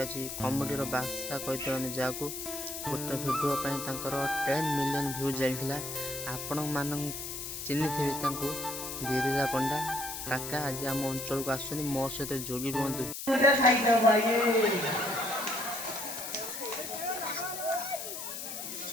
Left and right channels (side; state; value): left; noise; hiss, 7 dB below the sound